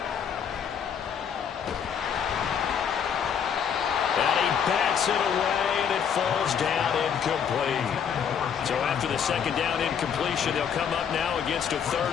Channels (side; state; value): right; quieter; 7.7 dB